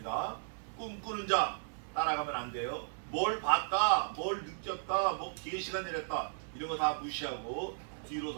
꿈꾸는 자 따라가면 안 돼요. 뭘 봤다, 뭘 느꼈다, 뭐 계시가 내렸다, 이런 거 다 무시하고 뒤로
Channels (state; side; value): silent; left; 54 dB below the other